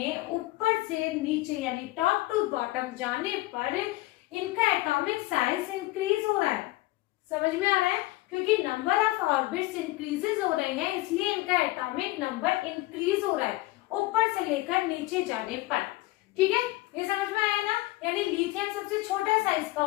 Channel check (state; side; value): quieter; right; 19.4 dB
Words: ऊपर से नीचे यानी टॉप टू बॉटम जाने पर इनका एटॉमिक साइज इंक्रीज हो रहा है। समझ में आ रहा है? क्योंकि नंबर ऑफ ऑर्बिट्स इंक्रीजेस हो रहे हैं इसलिए इनका एटॉमिक नंबर इंक्रीज हो रहा है ऊपर से लेकर नीचे जाने पर। ठीक है, ये समझ में आया ना? यानी लिथियम सबसे छोटा साइज का